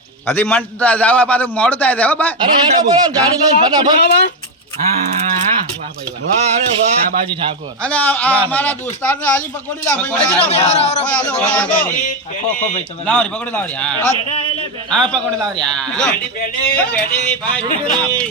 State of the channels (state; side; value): normal; both; correlation 0.07